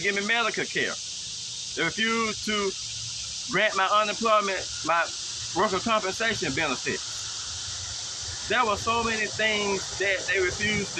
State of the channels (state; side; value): identical; both; correlation 1.00